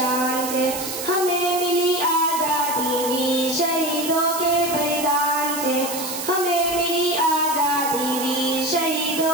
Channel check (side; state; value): right; noise; hiss, 6 dB below the sound